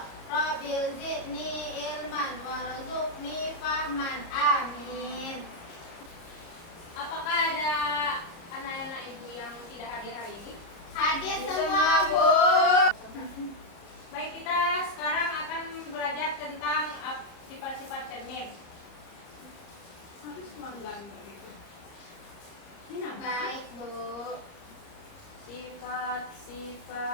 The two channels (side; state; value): right; late; 30 ms